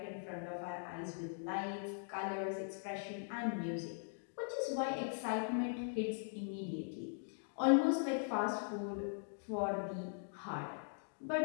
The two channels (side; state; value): right; silent; digital silence